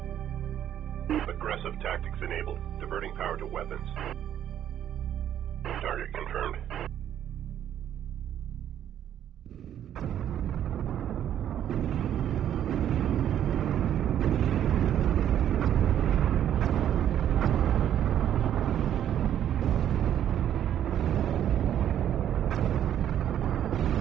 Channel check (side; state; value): left; quieter; 10.4 dB